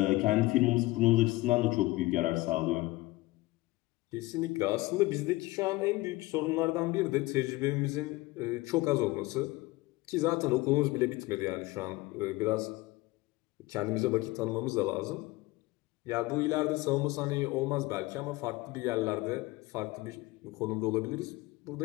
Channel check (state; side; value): quieter; right; 20.4 dB